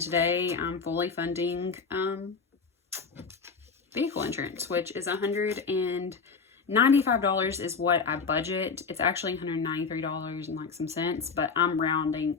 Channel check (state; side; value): quieter; right; 5.1 dB